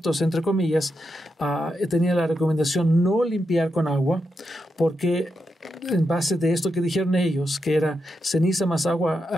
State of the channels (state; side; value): normal; both; correlation 0.85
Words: entre comillas, tenían la recomendación no limpiar con agua, porque en base de esto que dijeron ellos, que era ceniza más agua